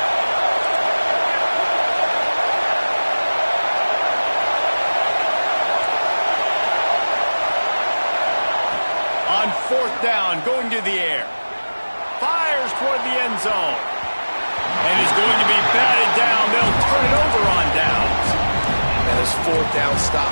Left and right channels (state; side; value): inverted; both; correlation -1.00